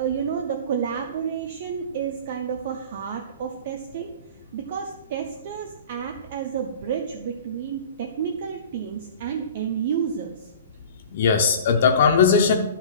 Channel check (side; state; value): both; inverted; correlation -0.40